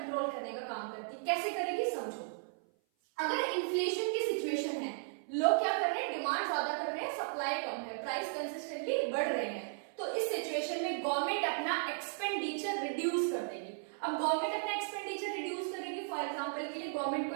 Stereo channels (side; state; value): left; silent; 54 dB below the other